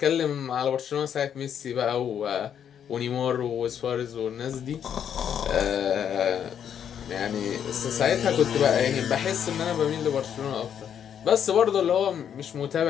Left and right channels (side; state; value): right; quieter; 8.7 dB